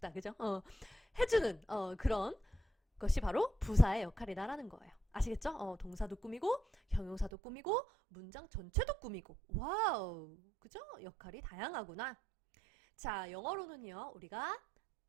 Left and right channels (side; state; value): left; drops out; at 7.3 s